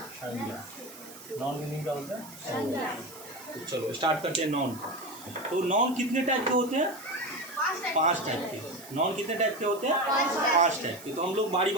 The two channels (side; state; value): right; noise; hiss, 17 dB below the sound